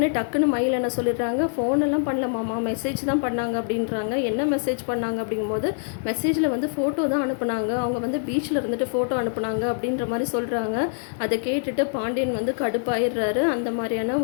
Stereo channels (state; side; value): silent; right; digital silence